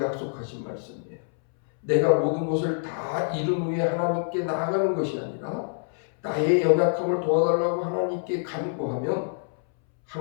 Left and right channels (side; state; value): right; silent; 61 dB below the other